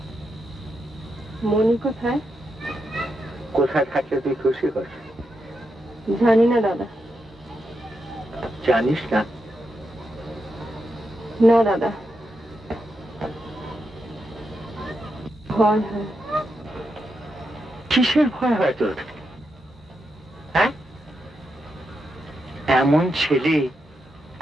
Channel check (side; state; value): both; normal; correlation 0.85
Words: মনি কোথায়? কোথায় থাকলে তুই খুশি কর? জানি না দাদা। জানিস না? না দাদা, ভয় হয়। কিসের ভয় হয় তোর? হ্যাঁ, এমন ছেলে,